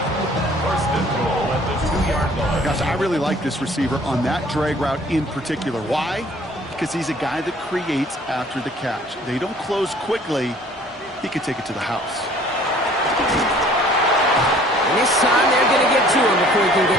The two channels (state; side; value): normal; both; correlation 0.54